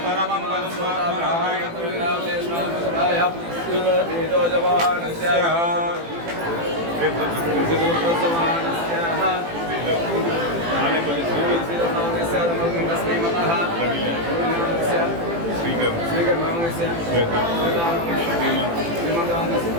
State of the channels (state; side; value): late; left; 18 ms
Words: పరమం పదం ఆత్మనారాయణ